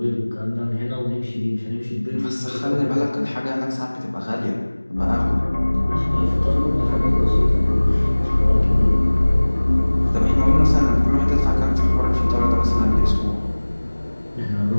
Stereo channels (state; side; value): inverted; both; correlation -1.00